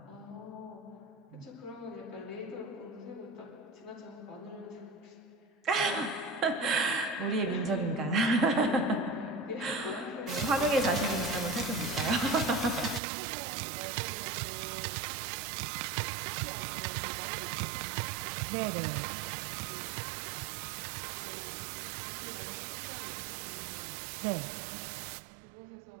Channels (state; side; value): drops out; left; at 13.0 s